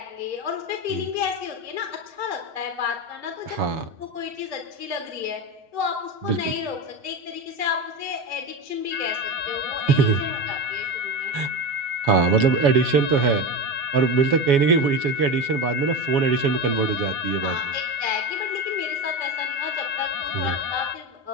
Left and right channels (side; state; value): left; late; 7.1 ms